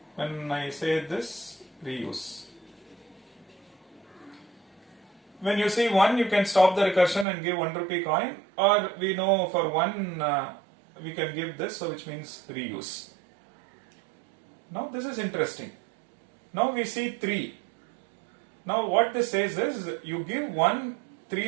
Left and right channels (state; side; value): drops out; left; at 7.2 s